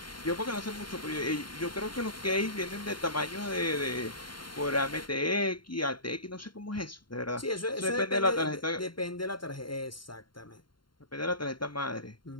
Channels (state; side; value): late; right; 0.72 ms